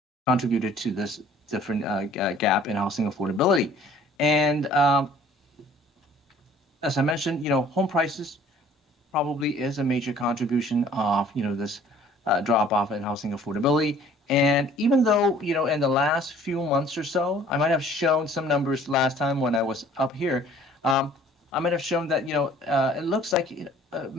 contributed to this different gap in housing affordability. And as I mentioned, home prices probably is a major contribution of this drop off in housing affordability. And even though in the last few months or so, I might have shown some numbers last time when I was up here. I might have shown that it looks like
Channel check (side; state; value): both; normal; correlation 0.54